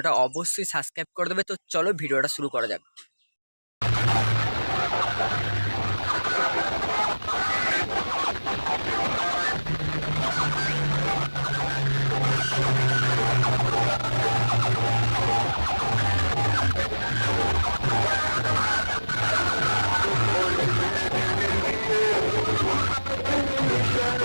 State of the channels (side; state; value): both; inverted; correlation -1.00